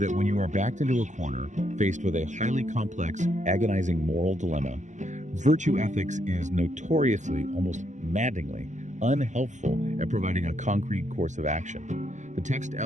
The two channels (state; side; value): late; left; 0.35 ms